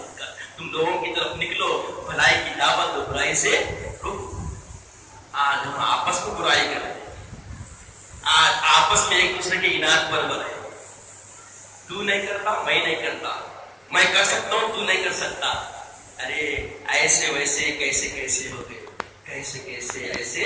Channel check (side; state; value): both; identical; correlation 1.00